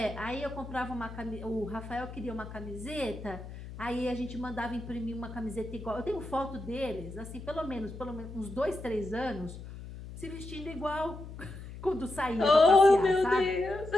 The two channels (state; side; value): noise; left; hum, 12 dB below the sound